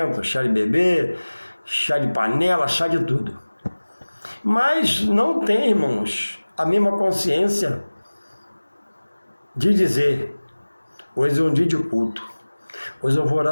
chá de bebê, chá de panela, chá de tudo. Mas não tem, irmãos, a mesma consciência de dizer, hoje é um dia de culto, hoje eu vou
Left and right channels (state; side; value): inverted; both; correlation -1.00